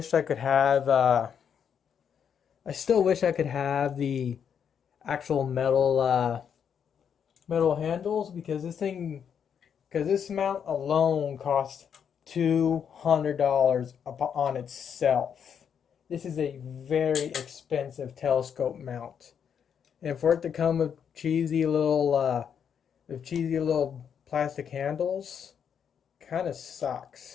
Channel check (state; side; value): quieter; right; 7.8 dB